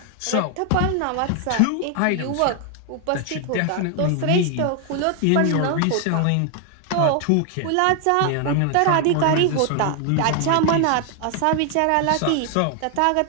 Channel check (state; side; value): different; both; correlation 0.00